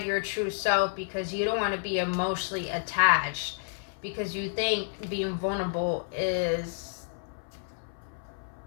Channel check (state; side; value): silent; right; 58 dB below the other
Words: your true self because you don't want to be emotionally attached, because you think being vulnerable is